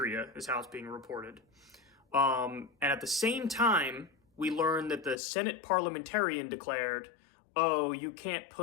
is how it's being reported. And at the same time, we learned that the Senate parliamentarian declared, oh, you can't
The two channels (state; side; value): drops out; right; at 5.2 s